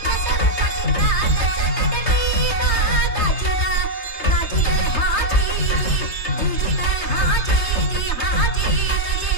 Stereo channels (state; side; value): late; right; 3.3 ms